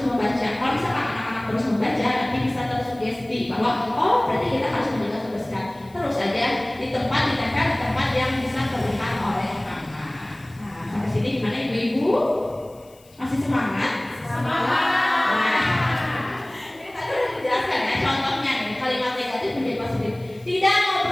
membaca. Kalau misalkan anak-anak terus membaca, nanti bisa terus Masih semangat? Ini tadi udah dijelaskan ya contohnya nih, kalimat negatif menjadi positif. Tidak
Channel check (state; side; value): noise; left; hiss, 28 dB below the sound